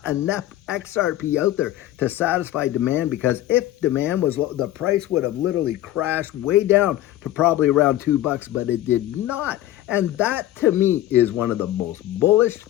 enough XRP out there to satisfy demand, because if demand was low, the price would have literally crashed way down to probably around $2, but it did not. And that, to me, is one of the most bullish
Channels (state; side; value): quieter; right; 14.1 dB